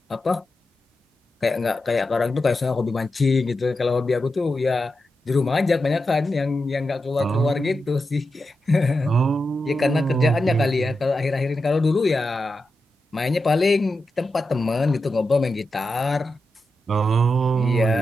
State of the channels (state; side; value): normal; both; correlation 0.89